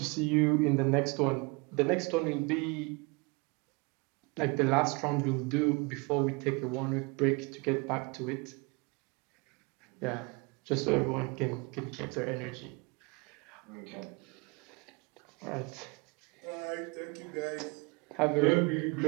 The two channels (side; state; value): left; quieter; 28.8 dB